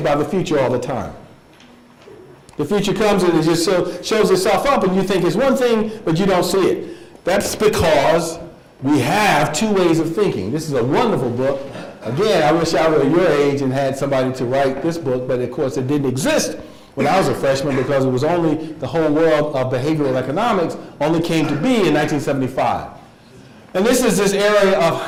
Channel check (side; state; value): both; identical; correlation 1.00